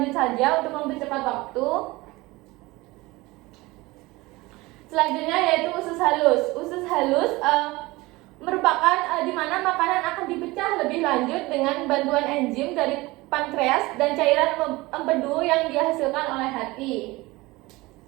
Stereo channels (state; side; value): quieter; left; 21.3 dB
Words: saja untuk mempercepat waktu. Selanjutnya yaitu usus halus. Usus halus merupakan di mana makanan akan dipecah lebih lanjut dengan bantuan enzim dari pankreas dan cairan empedu yang dihasilkan oleh hati.